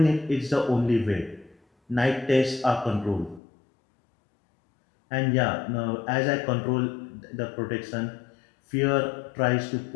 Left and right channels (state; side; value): drops out; right; at 3.4 s